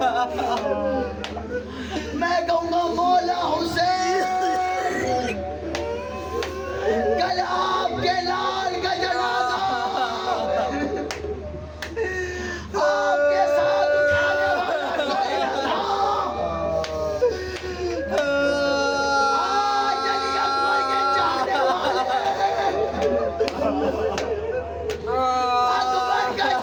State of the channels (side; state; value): both; identical; correlation 1.00